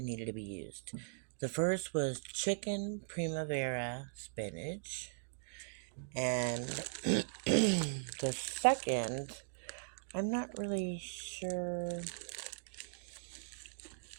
needed to be used. The first was chicken primavera spinach. And the second, I'm not really sure.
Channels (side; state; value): left; silent; digital silence